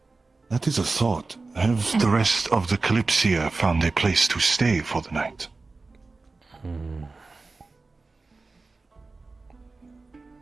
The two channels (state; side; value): quieter; left; 3.7 dB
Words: That is a thought. Have the rest of the Kalypsia found a place to stay for the night?